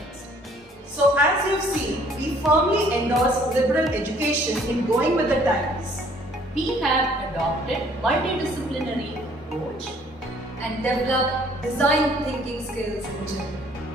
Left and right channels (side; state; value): both; normal; correlation 0.59